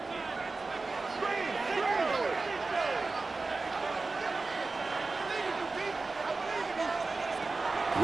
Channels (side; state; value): left; quieter; 3.7 dB